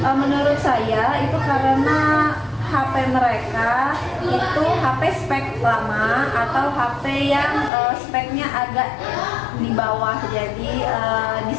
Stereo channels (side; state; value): right; drops out; at 7.7 s